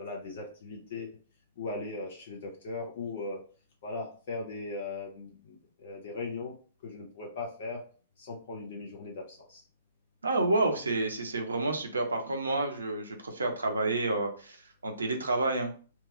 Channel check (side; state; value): both; inverted; correlation -0.65